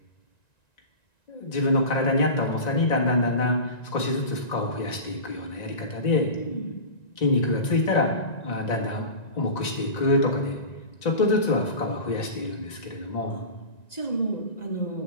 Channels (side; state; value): right; late; 1.9 ms